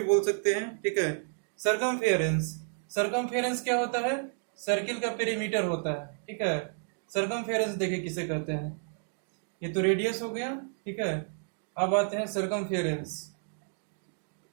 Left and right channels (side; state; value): left; silent; 57 dB below the other